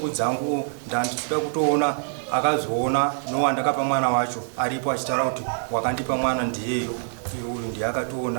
dzangu ndandichida kutoona akazoona nowandakapa mwana wacho aripo achitaura kuti wakandipa mwana ndiyeyo, uyu ndiye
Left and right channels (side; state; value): left; silent; 58 dB below the other